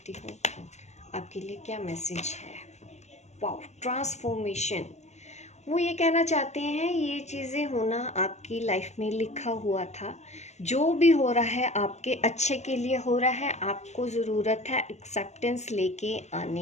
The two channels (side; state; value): right; late; 0.33 ms